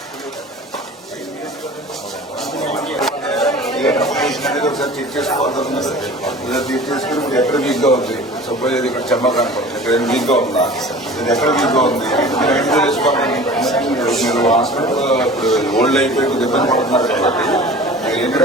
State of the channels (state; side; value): normal; both; correlation 0.41